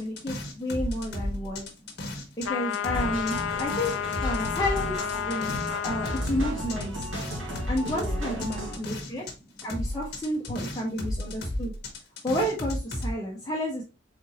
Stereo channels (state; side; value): normal; both; correlation 0.55